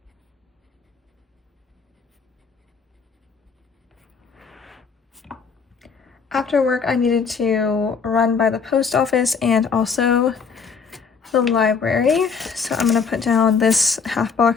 After work, I needed to run by the post office and also the library. So I'm going to put down this half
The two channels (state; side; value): quieter; right; 5.6 dB